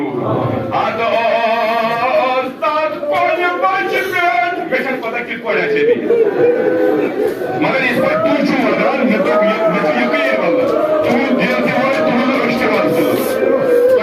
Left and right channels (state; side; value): identical; both; correlation 1.00